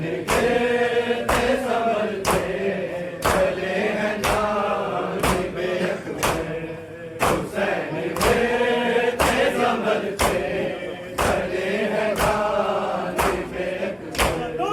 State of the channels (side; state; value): both; identical; correlation 1.00